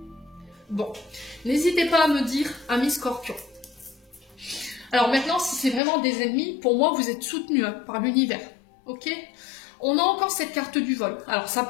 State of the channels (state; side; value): drops out; right; at 5.8 s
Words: Bon, n'hésitez pas à me dire, amis Scorpion. Alors maintenant, si c'est vraiment des ennemis, pour moi, vous êtes soutenus hein, par l'univers. Ok? On a encore cette carte du vol. Alors, ça